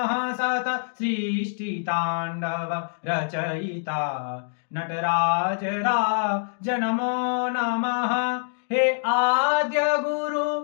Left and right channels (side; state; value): right; silent; digital silence